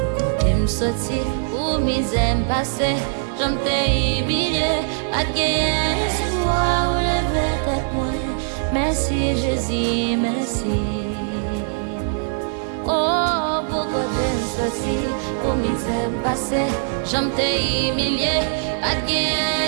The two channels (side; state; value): left; silent; 65 dB below the other